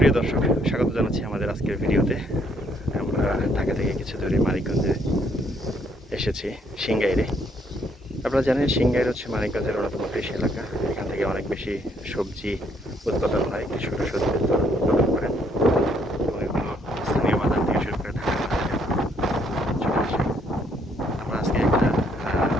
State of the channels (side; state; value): both; normal; correlation 0.69